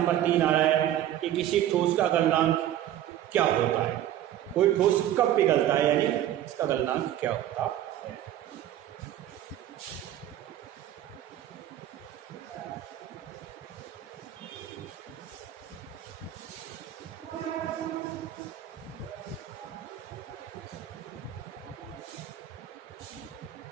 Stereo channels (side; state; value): left; quieter; 12.1 dB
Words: 3 आ रहा है कि किसी ठोस का गलनांक क्या होता है? कोई ठोस कब पिघलता है, यानी इसका गलनांक क्या होता है?